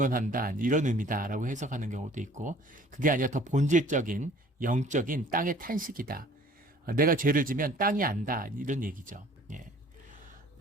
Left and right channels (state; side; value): normal; both; correlation 0.52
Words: 이런 의미다라고 해석하는 경우도 있고 그게 아니라 더 본질적인 영적인 땅의 탄식이다. 내가 죄를 지면 땅이 안다 이런 얘기죠.